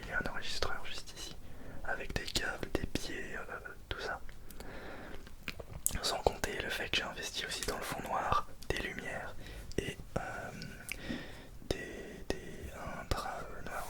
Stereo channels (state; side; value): identical; both; correlation 1.00